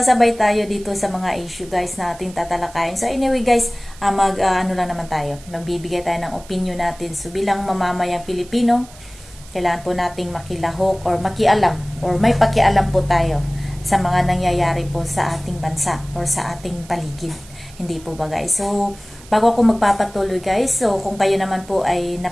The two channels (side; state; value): right; noise; hiss, 21 dB below the sound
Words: tayo dito sa mga issue guys na ating tatalakayin. So anyway guys, ano lang naman tayo, magbibigay tayo ng opinion natin. So bilang mamamayang Pilipino, kailangan po nating makilahok or makialam or may pakialam po tayo sa mga nangyayari po sa ating bansa or sa ating paligid. Hindi po ba guys? So bago ako magpapatuloy guys, so kung kayo naman po ay